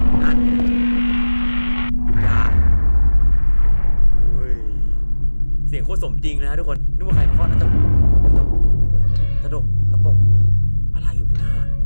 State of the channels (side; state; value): both; inverted; correlation -1.00